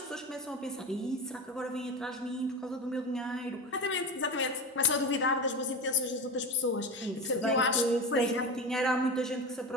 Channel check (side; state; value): both; normal; correlation 0.24